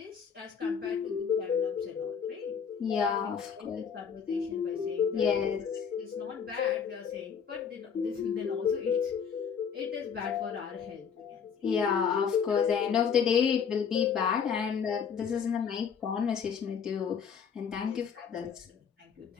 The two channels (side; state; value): right; quieter; 6.9 dB